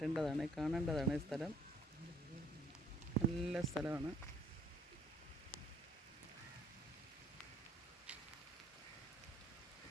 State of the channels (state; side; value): normal; both; correlation 0.61